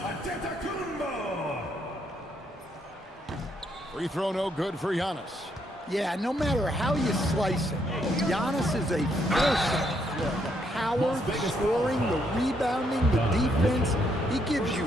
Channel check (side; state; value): both; normal; correlation 0.74